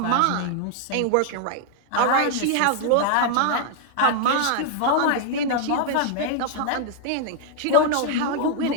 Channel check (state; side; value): different; both; correlation 0.00